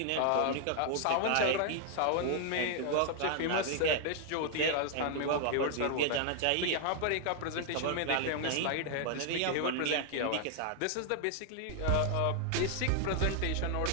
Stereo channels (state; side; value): different; both; correlation 0.00